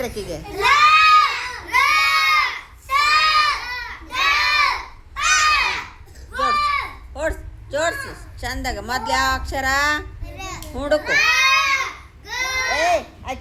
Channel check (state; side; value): identical; both; correlation 1.00